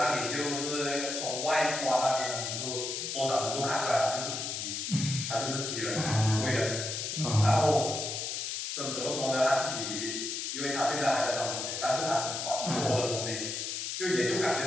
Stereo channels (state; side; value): noise; left; hiss, 3 dB below the sound